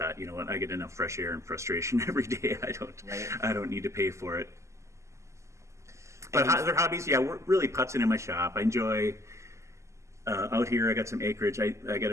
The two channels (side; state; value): left; late; 0.14 ms